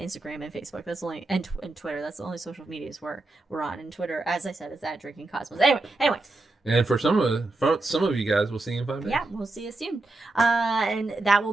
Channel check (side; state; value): left; quieter; 3.0 dB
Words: and Facebook. That's only and Twitter. That's the only social medias we're on. And Twitter, as I said, is at Drinking Cosmos. Anyway. And for some of you guys, we'll see you in 5 days. Yeah, we'll see you soon. And that will